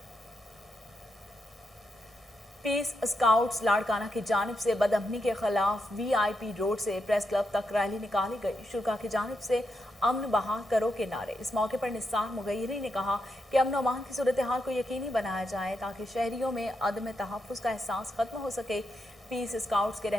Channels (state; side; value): normal; both; correlation 0.83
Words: पीस स्काउट्स लाड़काना की जानिब से बदअमनी के खिलाफ VIP रोड से प्रेस क्लब तक रैली निकाली गई। शुरा की जानिब से अमन बहाल करो के नारे। इस मौके पर निसार मुगैरी ने कहा कि अमन अमान की सूरत हाल को यकीनी बनाया जाए ताकि शहरियों में अदम तहफ़्फ़ुज़ का एहसास खत्म हो सके। पीस स्काउट्स के